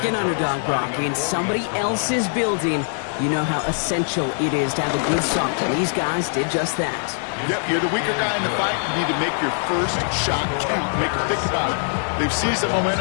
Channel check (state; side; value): silent; right; digital silence